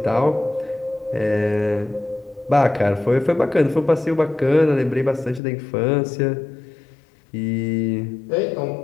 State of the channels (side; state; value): right; drops out; at 5.4 s